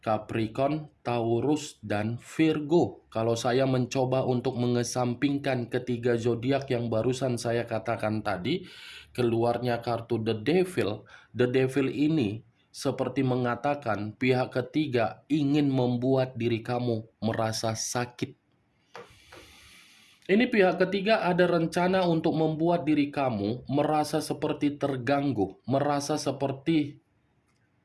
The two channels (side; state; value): both; identical; correlation 1.00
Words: Capricorn, Taurus, dan Virgo. Kalau saya mencoba untuk mengesampingkan ketiga zodiak yang barusan saya katakan tadi, keluarnya kartu The Devil. The Devil ini seperti mengatakan pihak ketiga ingin membuat diri kamu merasa sakit. Ini pihak ketiga ada rencana untuk membuat diri kamu merasa seperti terganggu, merasa seperti